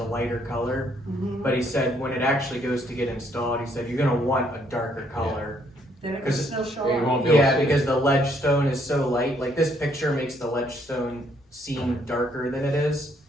lighter color. Mhm. But he said when it actually goes to get installed, he said you're gonna want a darker color. Then it can 'cause still show Yeah, you up. won't be able to Yeah, see it. because the ledge stone is so light, like this picture makes the ledge stone seem darker than it is,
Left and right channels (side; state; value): both; normal; correlation 0.69